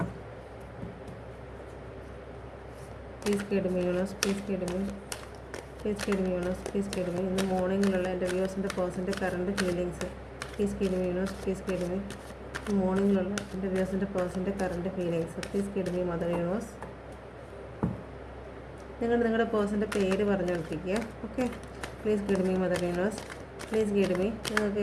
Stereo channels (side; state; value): both; identical; correlation 1.00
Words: Please guide me universe. Please guide me. Please guide me universe. Please guide me ഇന്ന് മോർണിംഗിലുള്ള എൻ്റെ വ്യൂസിൻ്റെ പേഴ്സൻ്റെ current feelings. Please guide me universe. Please guide me മോർണിംഗിലുള്ള എൻ്റെ വ്യൂസിൻ്റെ പേഴ്സൻ്റെ current feelings. Please guide me mother universe. നിങ്ങളുടെ പേഴ്സൻ്റെ പേര് പറഞ്ഞുകൊണ്ടിരിക്കുക. Okay, please guide me mother universe. Please guide me. നിങ്ങൾക്ക്